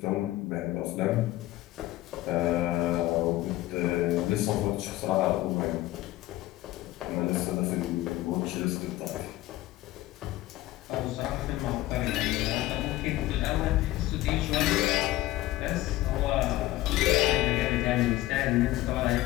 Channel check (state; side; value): quieter; right; 16.6 dB